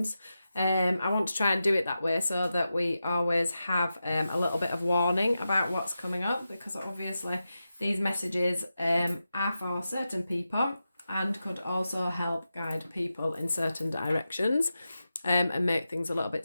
I want to try and do it that way so that we always have a little bit of warning about what's coming up, because obviously these messages are for certain people and could also help guide people in certain directions and make things a little bit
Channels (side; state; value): both; inverted; correlation -0.91